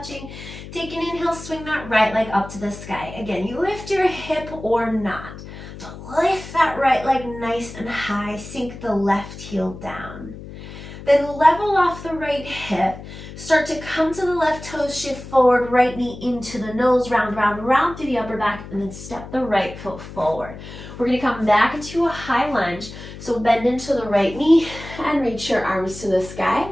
Take an inhale, swing that right leg up to the sky. Again, you lift your hip or not. So lift that right leg nice and high, sink the left heel down. Then level off the right hip, start to come to the left toes, shift forward, right knee into the nose, round, round, round through the upper back, and then step the right foot forward. We're gonna come back into a high lunge, so bend into the right knee and reach your arms to the sky.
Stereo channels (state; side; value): noise; left; hum, 13 dB below the sound